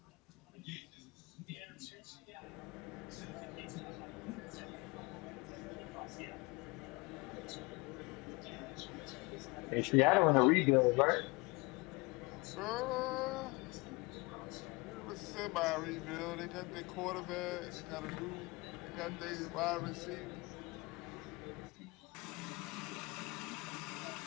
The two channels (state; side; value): quieter; right; 25.7 dB